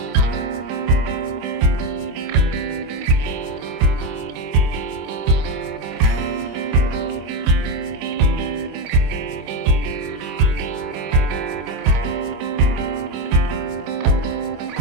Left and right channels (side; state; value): left; late; 25 ms